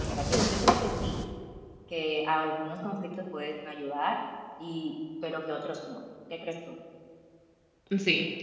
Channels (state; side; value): identical; both; correlation 1.00